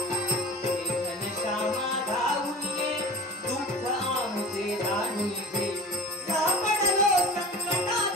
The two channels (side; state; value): both; normal; correlation 0.39